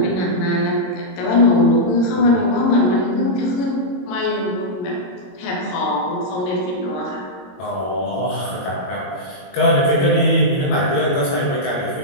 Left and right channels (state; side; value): late; right; 22 ms